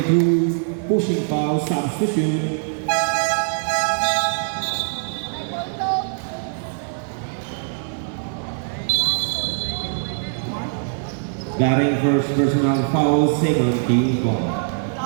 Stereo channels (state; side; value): silent; left; 58 dB below the other